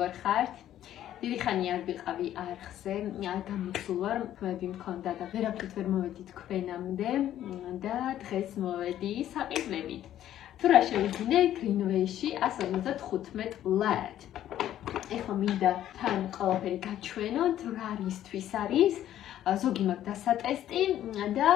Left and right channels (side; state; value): right; quieter; 11.9 dB